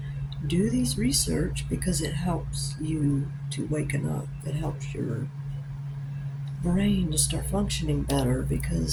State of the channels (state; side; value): identical; both; correlation 1.00